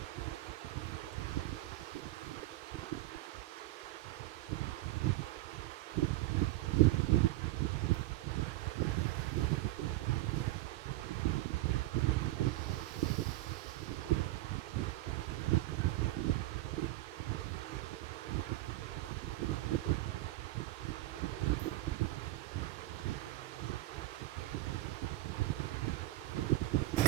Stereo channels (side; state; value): left; quieter; 17.6 dB